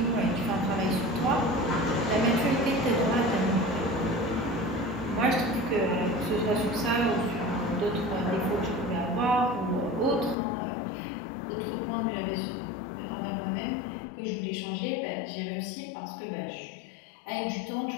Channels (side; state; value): right; drops out; at 10.4 s